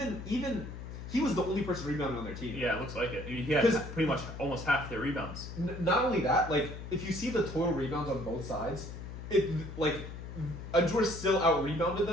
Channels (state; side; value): noise; left; hum, 10 dB below the sound